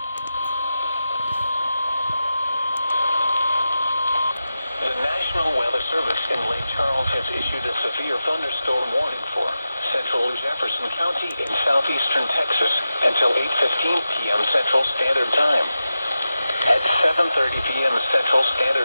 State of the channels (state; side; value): inverted; both; correlation -0.92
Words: The National Weather Service in Lake Charles has issued a severe thunderstorm warning for central Jefferson County in southeastern Texas until 8:15 p.m. Central Standard Time. At 7:30 p.m. Central